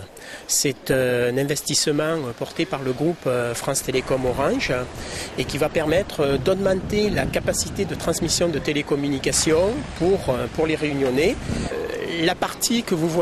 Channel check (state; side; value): identical; both; correlation 1.00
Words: C'est un investissement porté par le groupe France Télécom Orange et qui va permettre d'augmenter la capacité de transmission de télécommunications pour les Réunionnais. La partie que vous